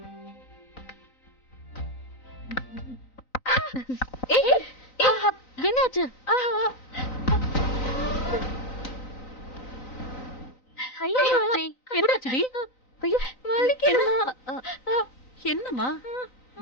என்னாச்சு? என்னாச்சுடி? ஐயோ வலிக்குது. என்னம்மா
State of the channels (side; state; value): right; late; 3.9 ms